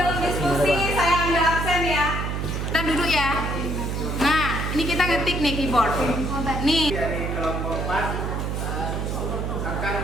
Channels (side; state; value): right; noise; hum, 2 dB below the sound